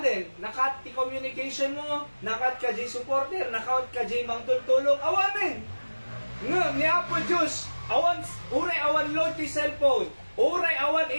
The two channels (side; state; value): both; inverted; correlation -1.00